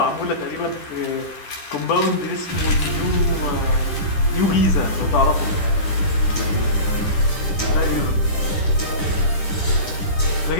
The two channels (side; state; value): right; late; 10 ms